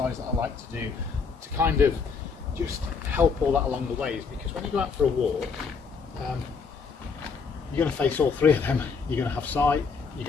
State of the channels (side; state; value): right; quieter; 5.3 dB